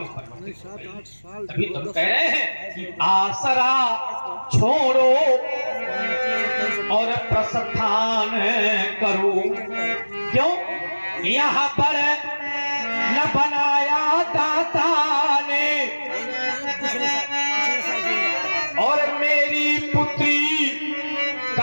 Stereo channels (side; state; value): both; inverted; correlation -1.00